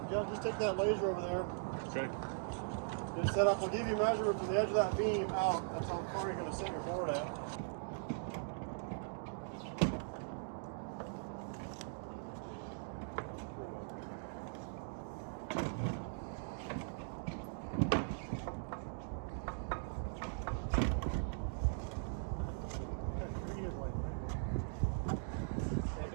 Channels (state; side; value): silent; left; digital silence